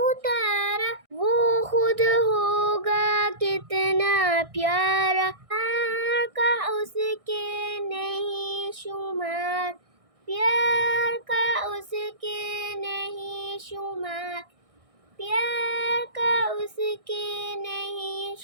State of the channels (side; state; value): left; late; 1.6 ms